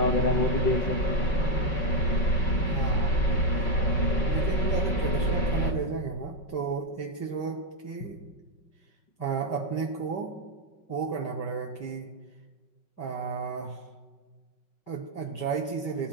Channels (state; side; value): late; right; 5.4 ms